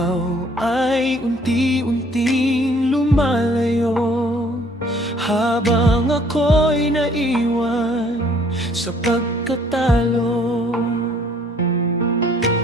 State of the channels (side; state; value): both; normal; correlation 0.59